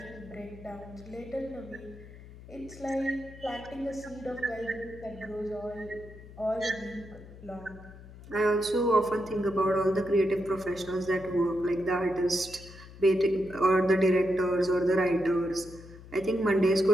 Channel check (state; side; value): noise; left; hum, 17 dB below the sound